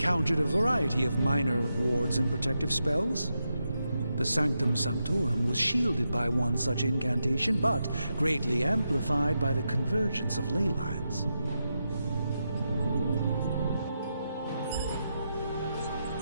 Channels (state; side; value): inverted; both; correlation -0.86